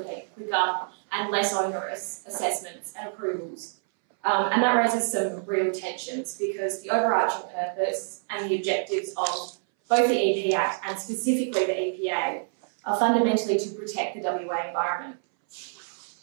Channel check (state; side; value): silent; left; 60 dB below the other